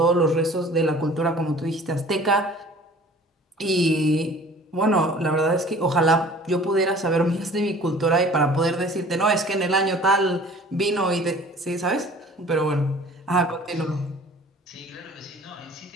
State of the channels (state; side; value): normal; both; correlation 0.48